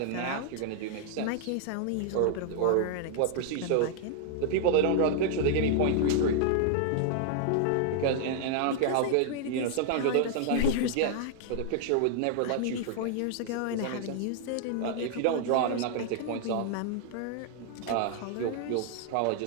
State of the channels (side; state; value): both; different; correlation 0.00